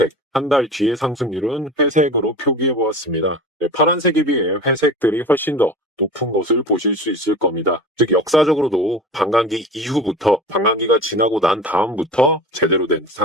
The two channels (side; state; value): both; normal; correlation 0.34